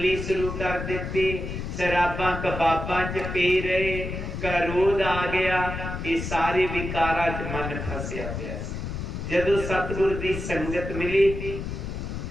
शुरू कर दी, शराबा कबाबा च पी रहे, क्रोध आ गया, ये सारे विकारा च मन फसिया पिया। जदों सतगुर की संगत मिली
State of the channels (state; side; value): noise; left; rumble, 5 dB below the sound